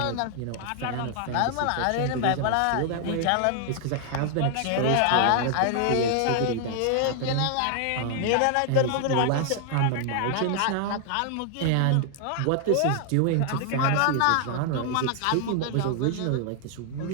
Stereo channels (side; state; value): both; different; correlation 0.00